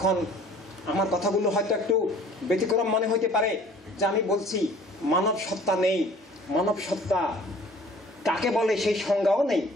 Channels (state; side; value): normal; both; correlation 0.51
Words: আমার কথাগুলো হয়তো একটু ব্যতিক্রম মনে হতে পারে যে আমি বলছি মানব সত্তা নেই। মানব সত্তা কাকে বলে সেই সংজ্ঞাও নেই।